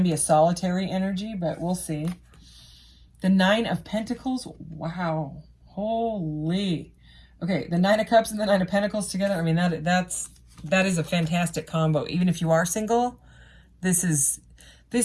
be a solitary energy, but we'll see. The 9 of Pentacles, wow, holy. Okay, the 9 of Cups and the 9 of Pentacles together, I mean, that is a fantastic combo. Even if you are single, this is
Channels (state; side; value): identical; both; correlation 1.00